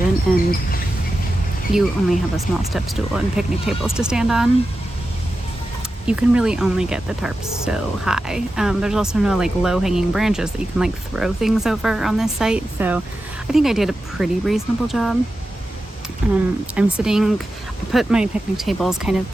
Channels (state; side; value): normal; both; correlation 0.91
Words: and you only have a small step stool and picnic tables to stand on. You can really only get the tarps so high. There's also no like low hanging branches that you can like throw things over on this site. So I think I did a pretty reasonable job. I put my picnic tables kind of